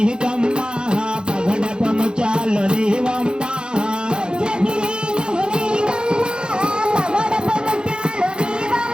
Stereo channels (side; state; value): left; late; 0.049 ms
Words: కమ్మ పగడపము చాలు నీవమ్మ